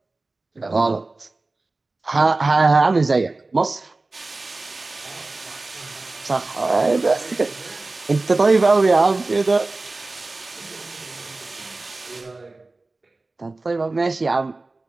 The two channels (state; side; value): quieter; left; 3.3 dB